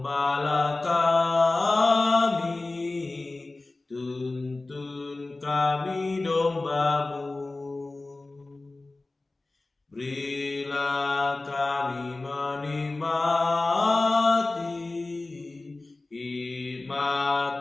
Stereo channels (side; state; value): right; quieter; 3.1 dB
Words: kami, tuntun kami domba-Mu. Berilah kami menikmati